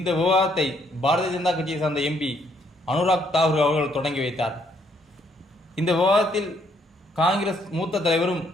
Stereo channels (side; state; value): both; normal; correlation 0.69